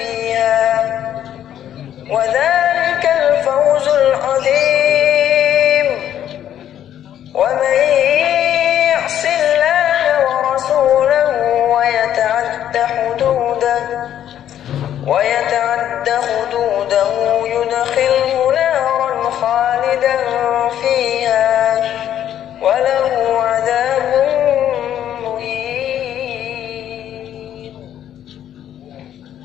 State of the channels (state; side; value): quieter; right; 10.7 dB